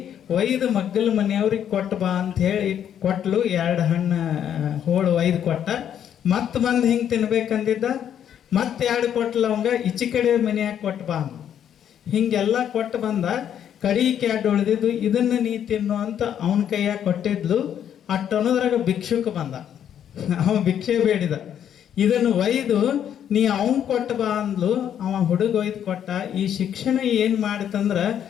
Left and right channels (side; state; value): right; quieter; 9.5 dB